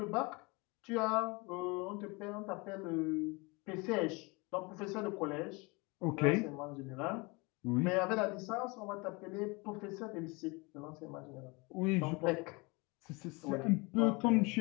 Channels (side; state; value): right; quieter; 27.1 dB